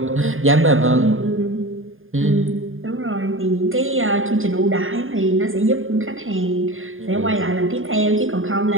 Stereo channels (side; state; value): left; late; 0.59 ms